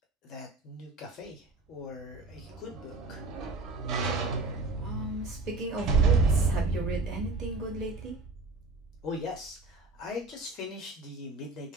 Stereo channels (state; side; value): quieter; left; 3.1 dB